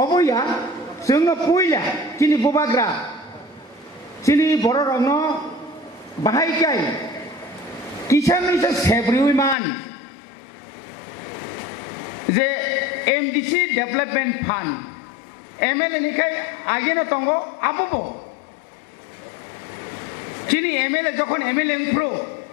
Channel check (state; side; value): drops out; right; at 9.6 s